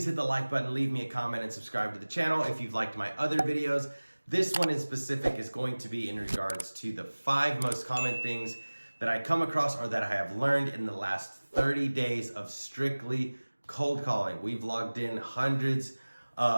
hit the like button, leave me a comment, and subscribe to the channel if you've liked my other videos. This one in specific is going to be in regards to the 5 most common things that I come across or that I have learned in the last 30 days of strictly cold calling. We've logged in hundreds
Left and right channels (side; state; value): both; inverted; correlation -1.00